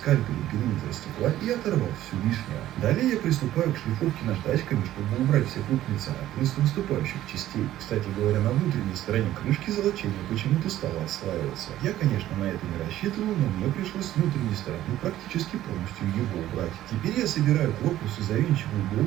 периметр стекла и оторвал всю лишнее. Далее я приступаю к шлифовке наждачками, чтобы убрать все крупные царапины с выступающих частей. Кстати говоря, на внутренней стороне крышки золочение почему-то стало отслаиваться. Я, конечно, на это не рассчитывал, но мне пришлось с внутренней стороны практически полностью его убрать. Теперь я собираю корпус и завинчиваю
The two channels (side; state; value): left; quieter; 13.5 dB